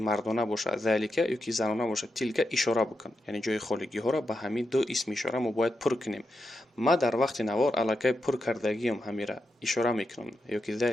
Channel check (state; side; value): normal; both; correlation 0.87